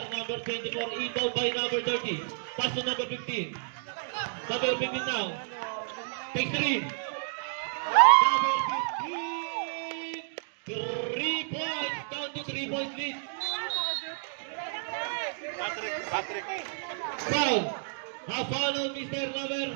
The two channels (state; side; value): silent; left; digital silence